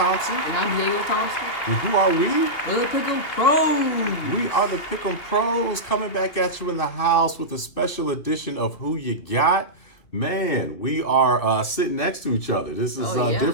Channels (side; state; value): right; late; 2.9 ms